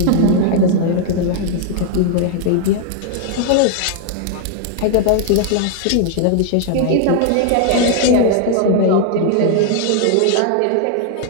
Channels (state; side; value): different; both; correlation 0.00